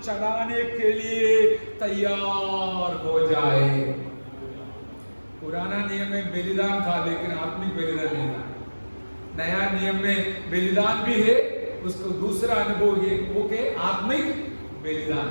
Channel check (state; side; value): inverted; both; correlation -1.00